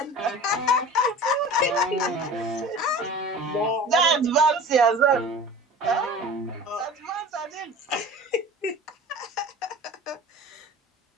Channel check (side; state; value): both; normal; correlation 0.38